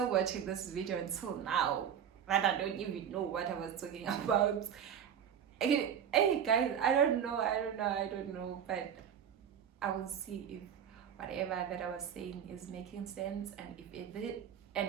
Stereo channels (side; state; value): left; quieter; 8.6 dB